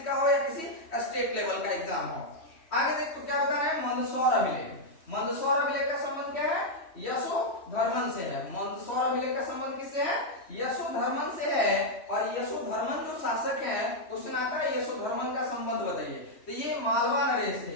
का हो या किसी स्टेट लेवल का एग्जाम हो। आगे देखो क्या बता रहे हैं मंदसौर अभिलेख। मंदसौर अभिलेख का संबंध क्या है? यशोधर्मन से है। मंदसौर अभिलेख का संबंध किससे है? यशोधर्मन से है। और यशोधर्मन जो शासक है, क्वेश्चन आता है यशोधर्मन का संबंध बताइए। तो ये मालवा नरेश थे।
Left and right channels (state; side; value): late; right; 3.1 ms